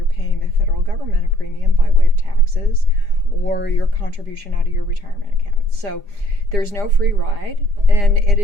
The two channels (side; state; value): left; late; 4.9 ms